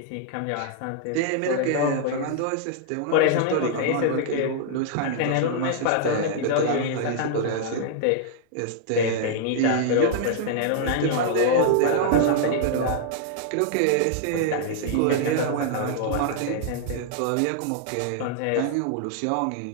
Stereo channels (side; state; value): both; different; correlation -0.01